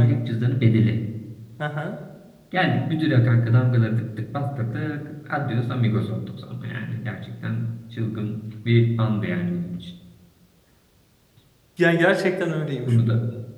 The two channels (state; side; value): identical; both; correlation 1.00